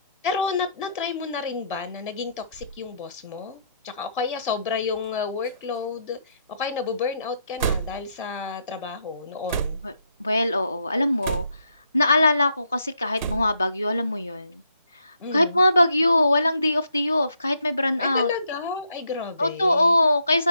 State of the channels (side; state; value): both; inverted; correlation -0.76